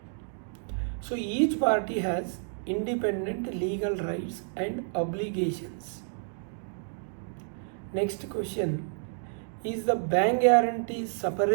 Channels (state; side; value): silent; left; digital silence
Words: So each party has independent legal rights and obligations. Next question, is the bank guarantee